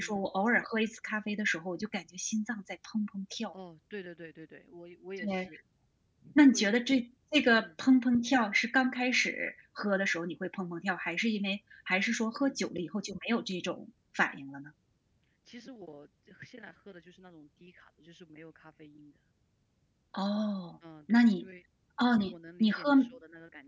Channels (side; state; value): both; identical; correlation 1.00